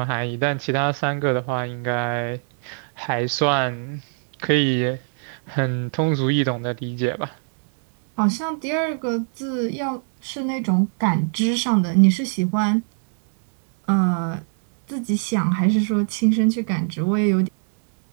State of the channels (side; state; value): left; silent; 63 dB below the other